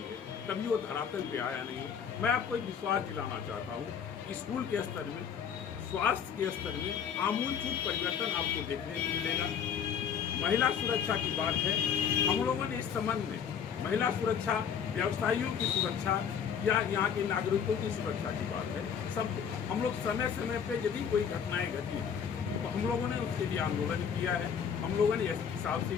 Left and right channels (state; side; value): quieter; right; 7.5 dB